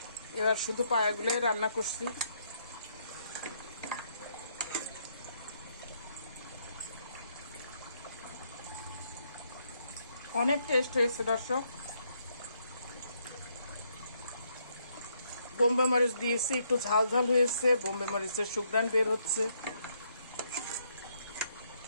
এবার শুধু পায়াগুলোই রান্না করছি। অনেক টেস্ট হয়েছে দর্শক। বোম্বে মরিচ দিয়েছি, একটু ঝাল ঝাল হয়েছে, বোম্বে মরিচের সুঘ্রাণ বের হচ্ছে।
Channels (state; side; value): inverted; both; correlation -0.73